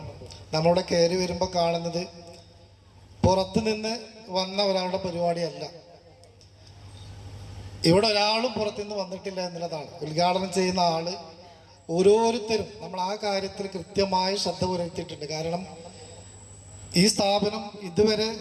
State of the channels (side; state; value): both; identical; correlation 1.00